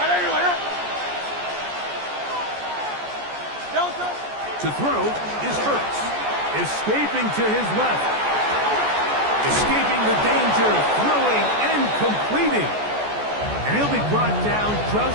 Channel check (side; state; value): left; late; 14 ms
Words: To throw is Hurts. Escaping to his left. Escaping the danger, throwing and completing. And he'll be brought down